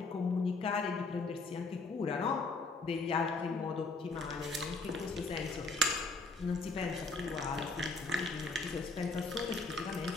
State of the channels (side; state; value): right; quieter; 3.4 dB